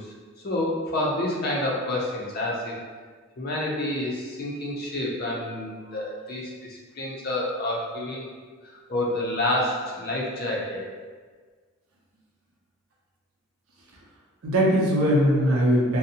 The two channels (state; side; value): normal; both; correlation 0.39